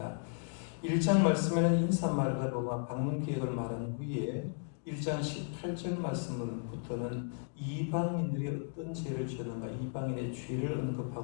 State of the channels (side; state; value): right; silent; 55 dB below the other